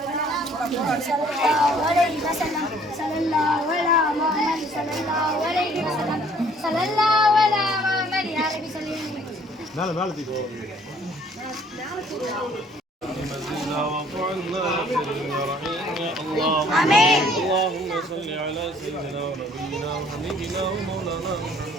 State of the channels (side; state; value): both; normal; correlation 0.59